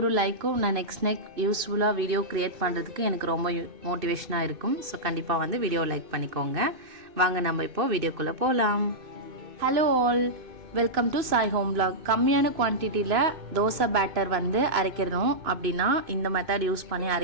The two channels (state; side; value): late; left; 2.5 ms